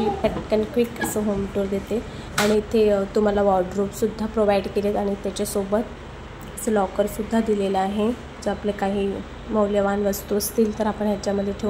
पटकन क्विक असं होम टूर देते आणि इथे तुम्हाला वॉर्डरोबसुद्धा प्रोव्हाइड केलेत आणि त्याच्यासोबत असं लॉकरसुद्धा दिलेलं आहे. जर आपले काही मौल्यवान वस्तू असतील तर आपण ह्याच्यामध्ये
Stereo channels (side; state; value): both; identical; correlation 1.00